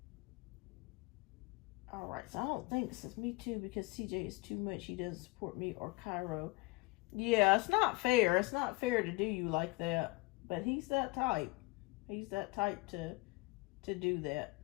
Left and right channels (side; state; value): right; quieter; 24.0 dB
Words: All right. So I don't think this is me too, because CJ is too much. He doesn't support me or Cairo. Yeah, it's not fair. It's not fair to do you like that. But he's that type. He's that type to do that,